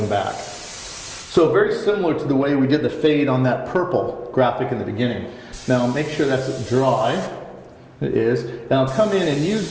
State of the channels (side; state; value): both; identical; correlation 1.00